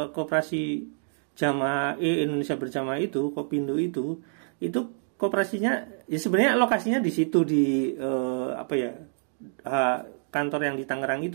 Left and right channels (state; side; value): silent; left; digital silence